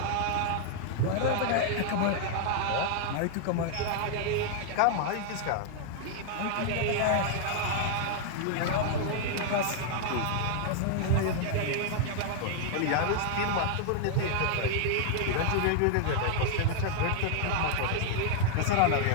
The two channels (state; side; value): different; both; correlation 0.00